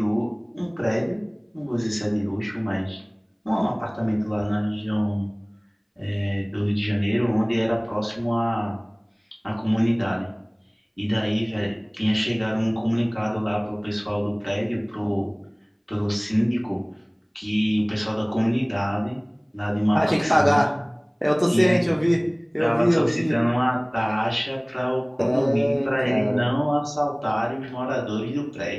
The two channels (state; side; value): identical; both; correlation 1.00